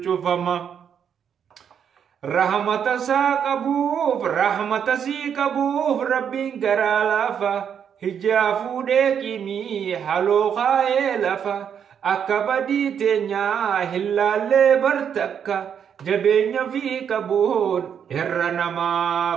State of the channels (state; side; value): quieter; left; 8.0 dB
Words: شفما رحمة ساقبوف رحمة سيقبوف ربين قرالافا هجافو ديكيمي حلو خايلافا أكبدي تنيا هلالي برتكا جبين في كبون إرنما